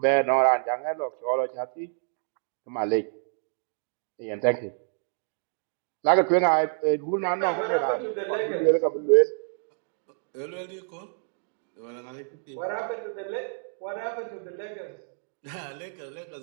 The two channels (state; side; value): silent; left; digital silence